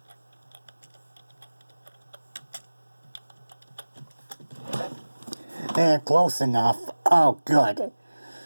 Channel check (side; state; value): both; inverted; correlation -1.00